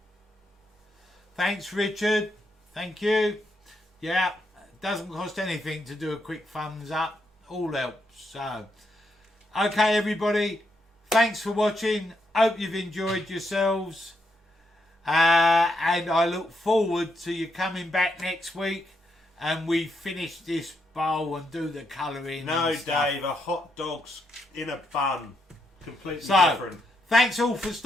Thanks, Richard. Thank you. Yeah, doesn't cost anything to do a quick thumbs up. All helps. So, okay, everybody. Thanks for watching. Hope you've enjoyed yourselves. And I look forward to you coming back next week and we finish this bowl and do the colouring. No, and stuff. Dave, a hot dog's in a bun. Completely So, different. thanks all for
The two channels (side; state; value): both; normal; correlation 0.80